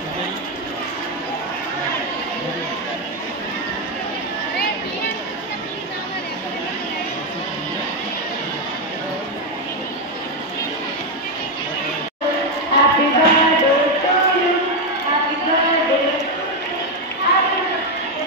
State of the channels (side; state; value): both; normal; correlation 0.05